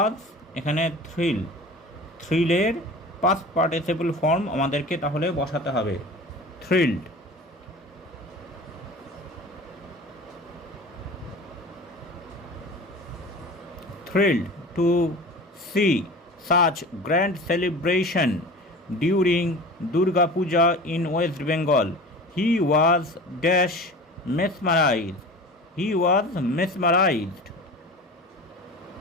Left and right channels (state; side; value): normal; both; correlation 0.37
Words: এখানে থ্রিলের পাস্ট পার্টিসিপল ফর্ম আমাদেরকে তাহলে বসাতে হবে thrilled. Thrilled to see such grand celebration during Durga Puja in West Bengal. He was dash mesmerized. He was mesmerized.